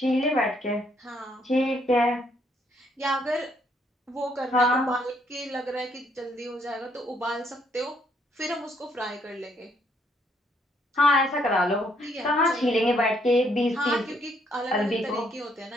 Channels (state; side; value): normal; both; correlation 0.70